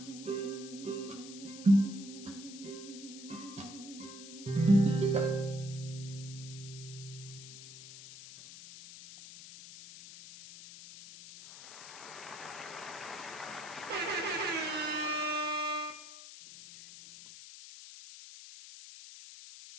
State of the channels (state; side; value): noise; left; hiss, 14 dB below the sound